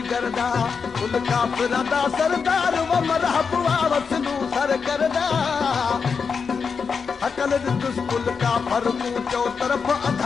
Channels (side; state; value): right; quieter; 5.6 dB